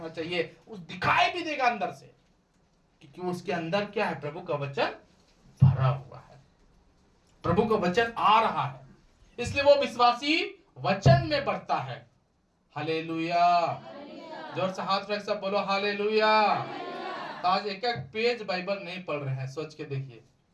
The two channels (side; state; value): both; identical; correlation 1.00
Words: चाहिए। उस दिखाई भी देगा अंदर से, क्योंकि उसके अंदर क्या है, प्रभु का वचन भरा हुआ है, प्रभु का वचन आ रहा है। इसलिए वो विश्वासी वचन में बढ़ता है। हालेलुया। जोर से हाथ रख सब बोलो हालेलुया। तो आज एक एक पेज बाइबल नहीं पढ़ रहे हैं, सोच के देखिए